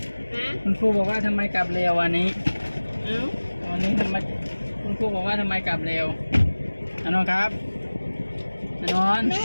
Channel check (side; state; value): both; inverted; correlation -1.00